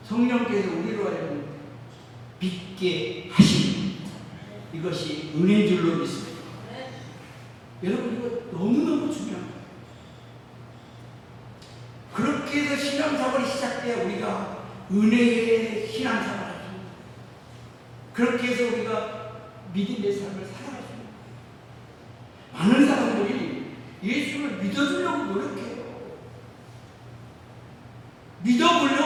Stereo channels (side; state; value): both; identical; correlation 1.00